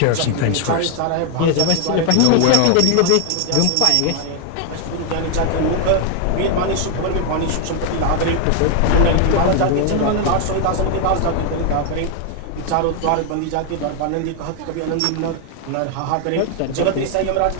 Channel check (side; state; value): both; different; correlation 0.00